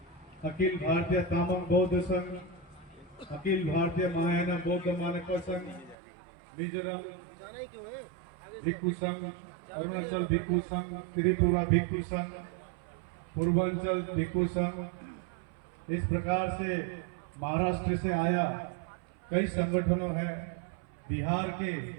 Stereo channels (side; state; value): left; drops out; at 6.0 s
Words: अखिल भारतीय तामांग बौद्ध संघ, अखिल भारतीय महायान बौद्ध मानक संघ, मिजोरम भिक्षु संघ, अरुणाचल भिक्षु संघ, त्रिपुरा भिक्षु संघ, पूर्वांचल भिक्षु संघ, इस प्रकार से महाराष्ट्र से आया कई संगठनों हैं, बिहार के